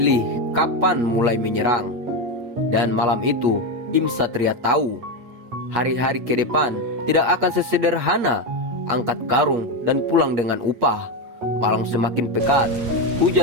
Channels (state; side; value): late; left; 8.4 ms